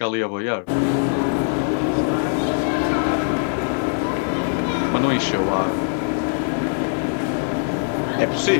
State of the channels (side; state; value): right; silent; 62 dB below the other